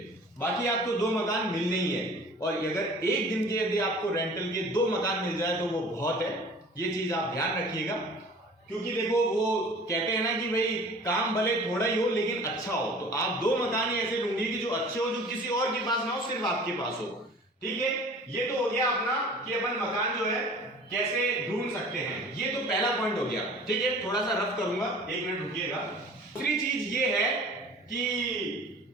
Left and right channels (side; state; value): both; normal; correlation 0.45